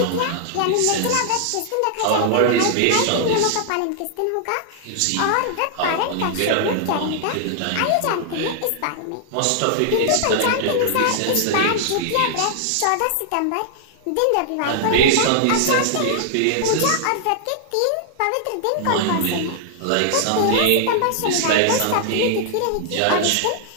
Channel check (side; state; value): both; different; correlation -0.01